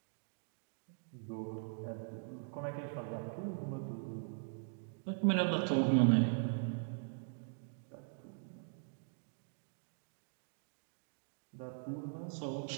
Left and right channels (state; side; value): silent; left; digital silence